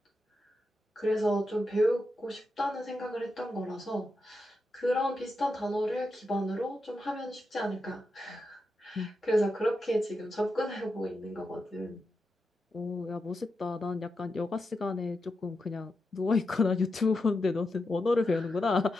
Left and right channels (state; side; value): normal; both; correlation 0.87